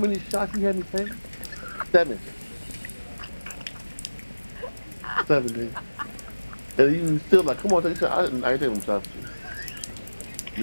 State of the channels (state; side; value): inverted; both; correlation -1.00